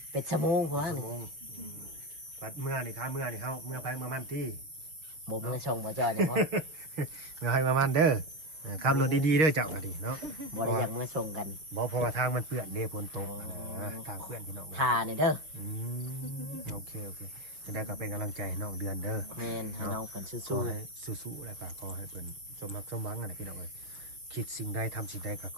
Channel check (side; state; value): left; late; 6.8 ms